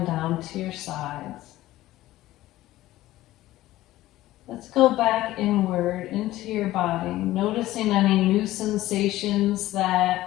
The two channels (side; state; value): right; quieter; 15.8 dB